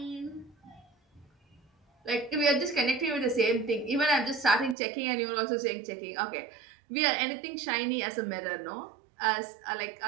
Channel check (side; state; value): left; drops out; at 4.8 s